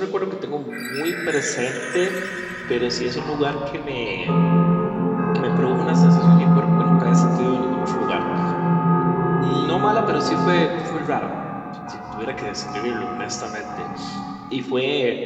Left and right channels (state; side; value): identical; both; correlation 1.00